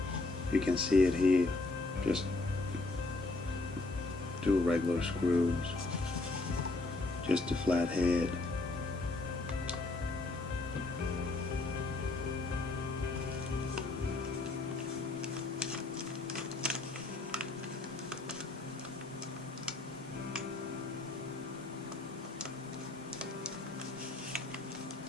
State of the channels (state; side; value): quieter; right; 3.1 dB